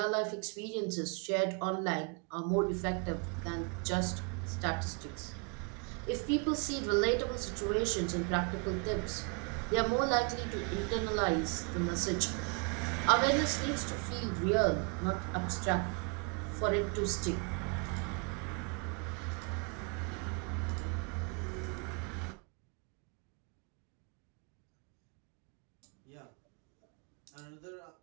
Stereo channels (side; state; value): left; quieter; 36.2 dB